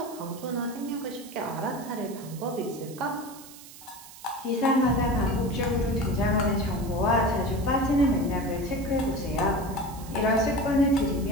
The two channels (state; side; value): noise; right; hiss, 18 dB below the sound